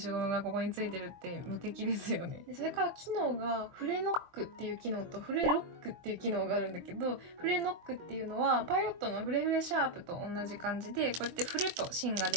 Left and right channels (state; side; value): late; left; 23 ms